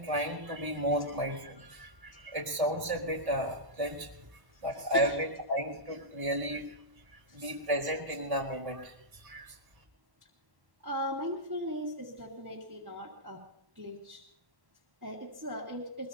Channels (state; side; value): late; left; 1.1 ms